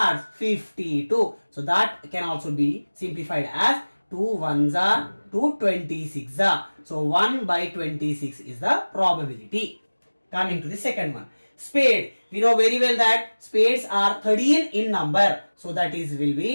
52. So that can also be simplified as 2 1s are 2 26s are. So 1 by 26 is the probability. Coming to the second one, spade. We know very well that spades are 13 in number. So that is will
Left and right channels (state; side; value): inverted; both; correlation -1.00